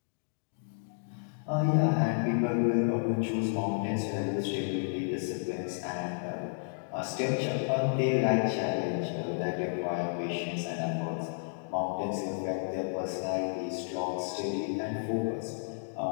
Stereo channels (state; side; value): silent; right; digital silence